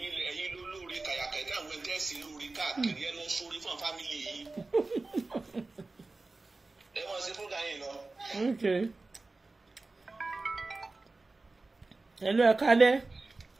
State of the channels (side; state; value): left; quieter; 3.4 dB